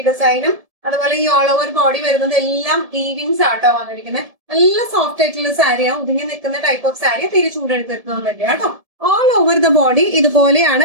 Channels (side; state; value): left; late; 1.7 ms